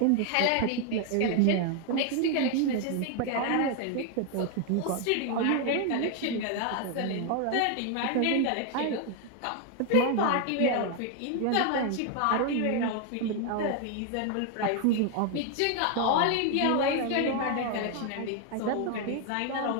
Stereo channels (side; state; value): both; different; correlation 0.01